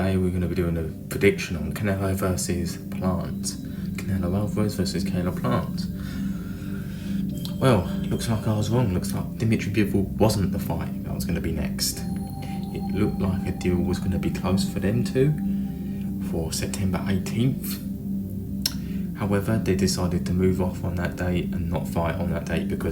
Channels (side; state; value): both; identical; correlation 1.00